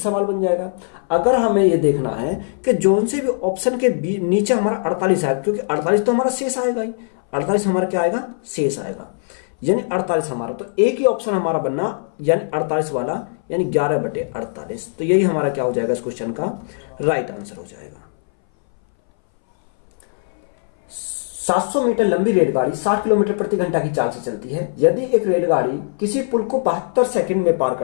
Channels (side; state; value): right; silent; 62 dB below the other